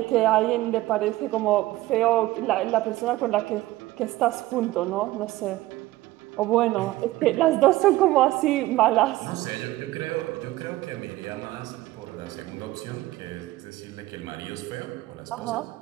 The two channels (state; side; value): quieter; left; 17.4 dB